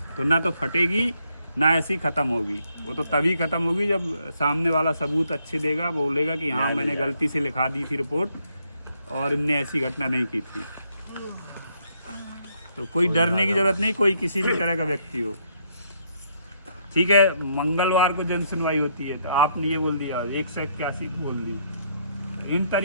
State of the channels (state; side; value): inverted; both; correlation -0.72